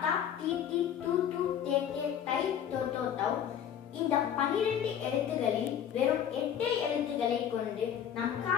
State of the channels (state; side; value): quieter; right; 9.3 dB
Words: டி டி டு டு தே தே தை தோ தோ தௌ இந்த 12 எழுத்துகளில் வெறும் 8 எழுத்துக்களை கொண்டு நம்